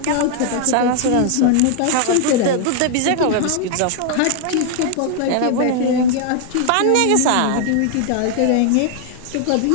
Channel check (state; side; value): different; both; correlation 0.00